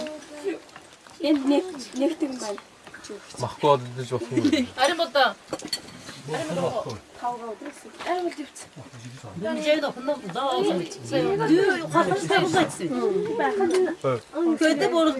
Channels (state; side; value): identical; both; correlation 1.00